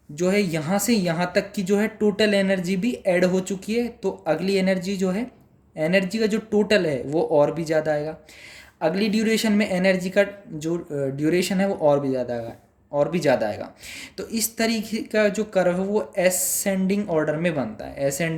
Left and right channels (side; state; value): both; identical; correlation 1.00